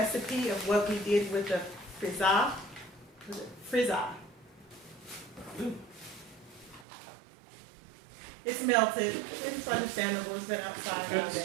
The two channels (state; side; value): drops out; left; at 6.9 s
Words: of what we did with the frizza. It's melted. It's understandable. It's been outside all day.